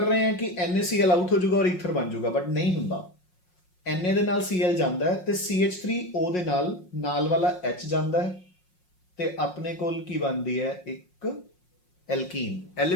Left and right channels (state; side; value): late; right; 5.5 ms